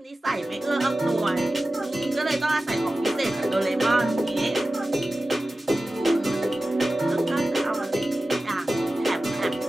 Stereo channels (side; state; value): both; normal; correlation 0.95